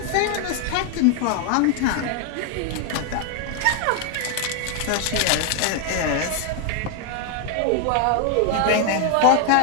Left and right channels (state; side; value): different; both; correlation 0.00